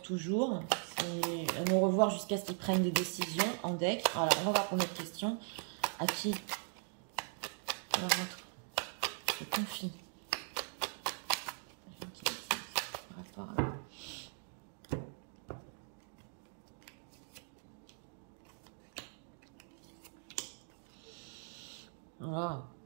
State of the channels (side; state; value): left; silent; 51 dB below the other